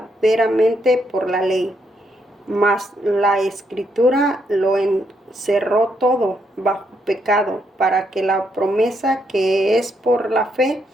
por la ley. Mas la Escritura lo encerró todo bajo pecado, para que la promesa que es por la fe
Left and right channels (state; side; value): normal; both; correlation 0.76